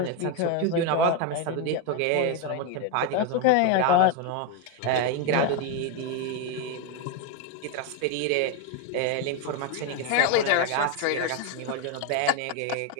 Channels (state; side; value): different; both; correlation 0.02